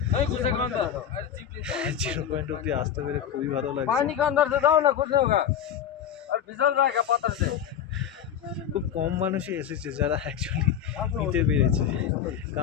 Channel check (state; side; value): quieter; right; 9.2 dB